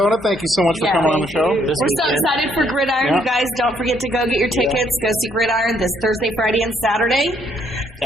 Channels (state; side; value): normal; both; correlation 0.69